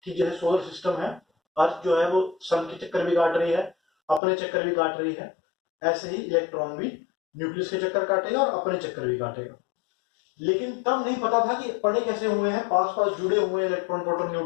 ठीक जैसे सोलर सिस्टम है, अर्थ जो है वो सन के चक्कर भी काट रही है, अपने चक्कर भी काट रही है, ऐसे ही इलेक्ट्रॉन भी न्यूक्लियस के चक्कर काटेगा और अपने चक्कर भी काटेगा। लेकिन तब नहीं पता था कि पड़े कैसे हुए हैं, पास पास जुड़े हुए हैं इलेक्ट्रॉन प्रोटॉन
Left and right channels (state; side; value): drops out; right; at 4.2 s